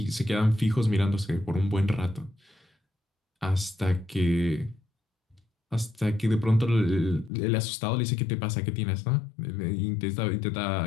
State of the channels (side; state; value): right; drops out; at 7.3 s